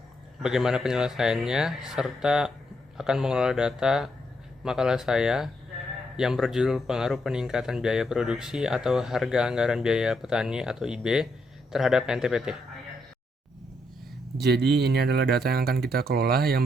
bagaimana penyelesaiannya, serta akan mengelola data makalah saya yang berjudul Pengaruh Peningkatan Biaya Produksi atau Harga Anggaran Biaya Petani atau IB terhadap NTPT. Jadi ini adalah data yang akan kita kelola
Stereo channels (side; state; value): both; normal; correlation 0.77